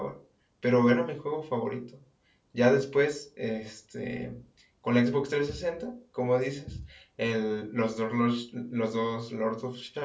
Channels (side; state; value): both; identical; correlation 1.00